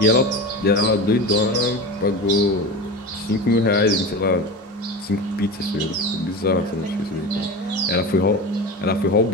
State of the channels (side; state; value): both; normal; correlation 0.27